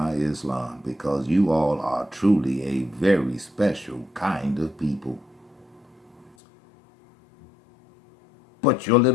Islam, because you all are truly a very special kind of people. But your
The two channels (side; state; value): right; drops out; at 6.4 s